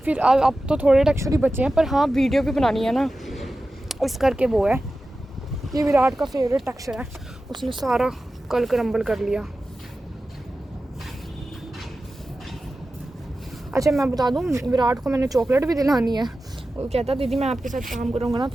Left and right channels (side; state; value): both; normal; correlation 0.94